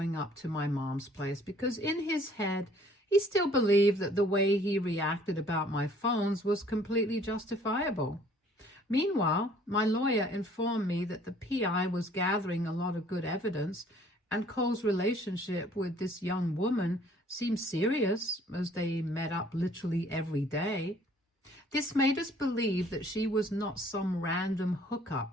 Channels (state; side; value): normal; both; correlation 0.57